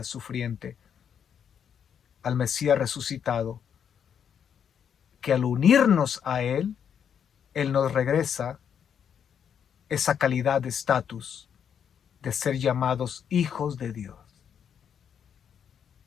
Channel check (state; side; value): quieter; right; 8.1 dB